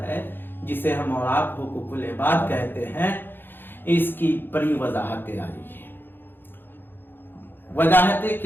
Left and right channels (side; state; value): right; late; 0.099 ms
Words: جسے ہم اور آپ حقوق العباد کہتے ہیں، اس کی بڑی وضاحتیں آ رہی ہیں۔ وضاحتیں